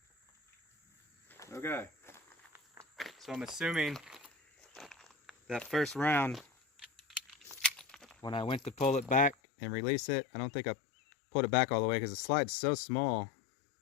Okay. So I'm assuming that first round, when I went to pull it back and release it, I don't think I pulled it back all the way because the slide's so small.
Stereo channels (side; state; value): right; drops out; at 9.3 s